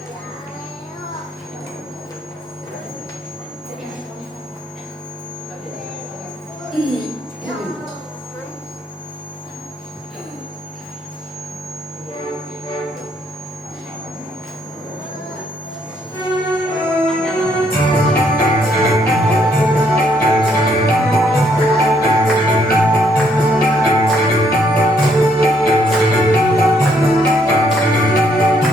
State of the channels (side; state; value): both; normal; correlation 0.70